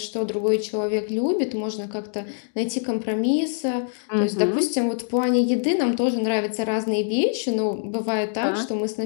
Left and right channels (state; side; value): silent; right; digital silence